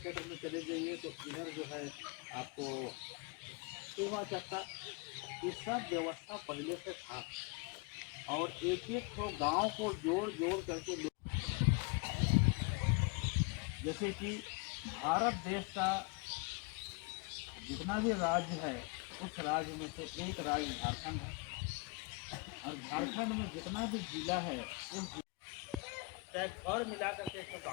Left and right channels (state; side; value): quieter; right; 26.6 dB